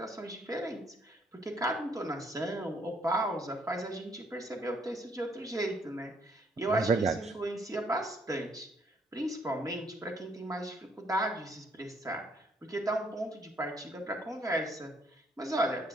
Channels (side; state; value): both; normal; correlation 0.68